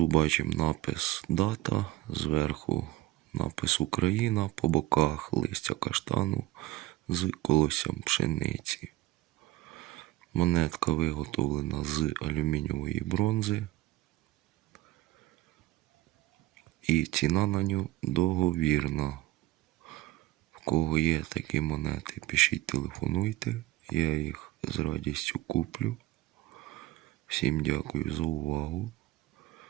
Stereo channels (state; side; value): quieter; left; 16.8 dB